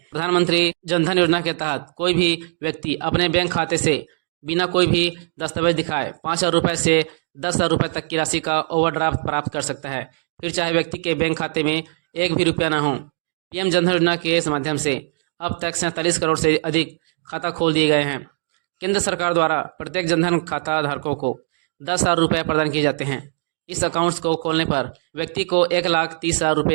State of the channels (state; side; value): silent; left; digital silence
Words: जनधन योजना के तहत कोई भी व्यक्ति अपने बैंक खाते से बिना कोई भी दस्तावेज दिखाए 5,000 रुपये से 10,000 रुपये तक की राशि का ओवरड्राफ्ट प्राप्त कर सकता है, फिर चाहे व्यक्ति के बैंक खाते में एक भी रुपया ना हो। पीएम जनधन योजना के माध्यम से अब तक 47 करोड़ से अधिक खाता खोल दिए गए हैं। केंद्र सरकार द्वारा प्रत्येक जनधन खाता धारकों को 10,000 रुपये प्रदान किए जाते हैं। इस अकाउंट्स को खोलने पर व्यक्ति को 1,30,000